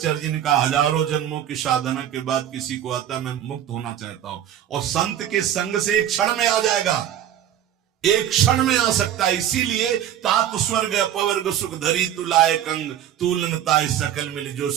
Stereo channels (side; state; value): left; quieter; 10.7 dB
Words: जी ने कहा, हजारों जन्मों की साधना के बाद किसी को आता मैं मुक्त होना चाहता हूं, और संत के संग से एक क्षण में आ जाएगा, एक क्षण में आ सकता है। इसीलिए तात स्वर्ग अपवर्ग सुख धरी तुलाए कंग, तुलनताय सकल मिल जो